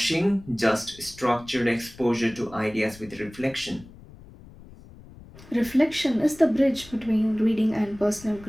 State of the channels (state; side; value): noise; left; rumble, 20 dB below the sound